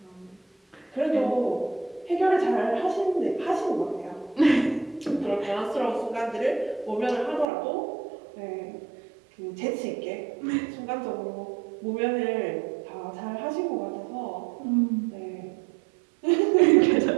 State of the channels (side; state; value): left; drops out; at 7.5 s